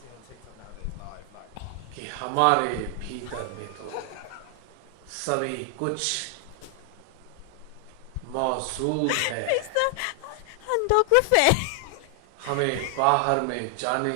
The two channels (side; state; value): both; different; correlation 0.00